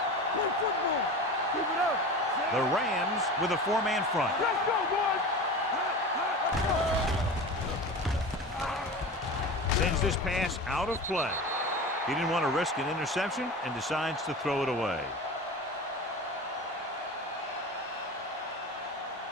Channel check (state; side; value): normal; both; correlation 0.31